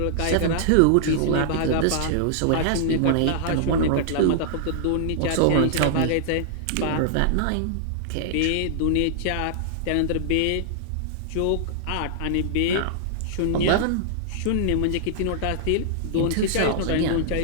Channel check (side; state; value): both; different; correlation -0.01